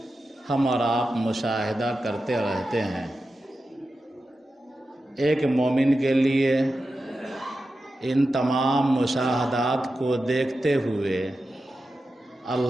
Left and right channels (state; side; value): normal; both; correlation 0.91